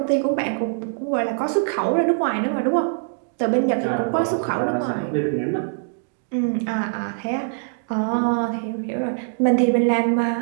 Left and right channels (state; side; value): silent; left; 64 dB below the other